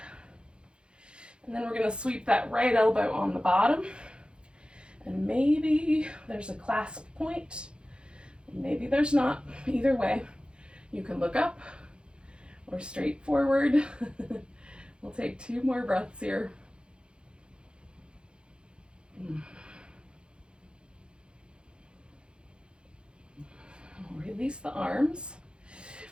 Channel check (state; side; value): late; left; 0.054 ms